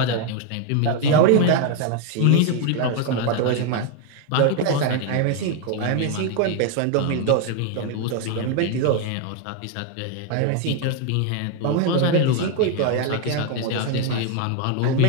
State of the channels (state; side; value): different; both; correlation 0.01